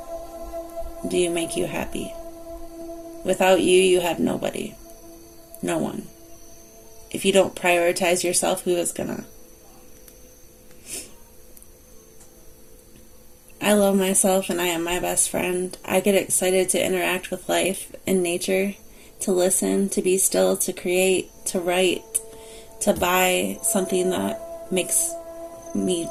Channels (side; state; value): both; identical; correlation 1.00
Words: Do you make you happy? Without you, you have nobody. No one. If you don't prioritize yourself, who is gonna? I love myself and I am my best friend. I get excited to interact with life and nature, to listen, to be still, to create, to write, to buy something that makes me